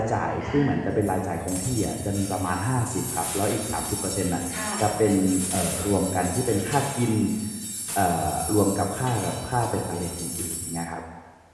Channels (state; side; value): identical; both; correlation 1.00